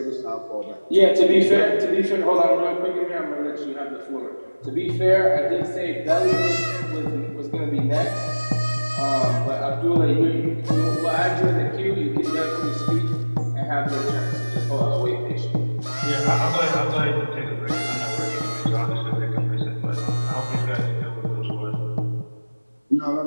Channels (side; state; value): both; inverted; correlation -1.00